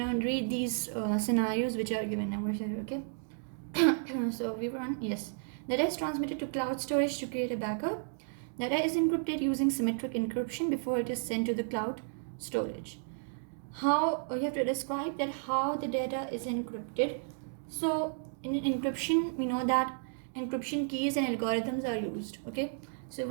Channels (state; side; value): silent; left; digital silence